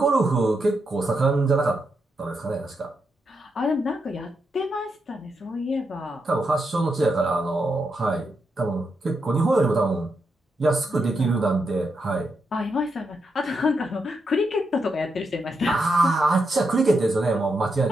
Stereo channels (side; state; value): both; normal; correlation 0.83